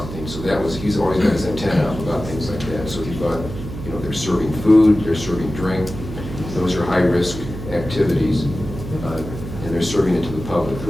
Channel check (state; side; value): noise; right; hum, 9 dB below the sound